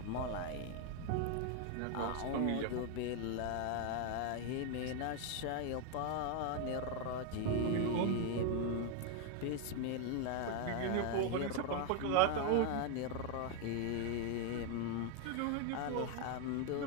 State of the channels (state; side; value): different; both; correlation 0.01